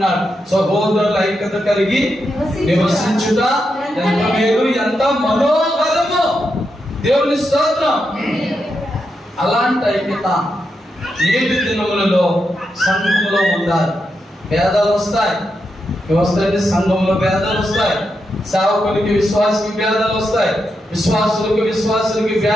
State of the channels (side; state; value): both; normal; correlation 0.85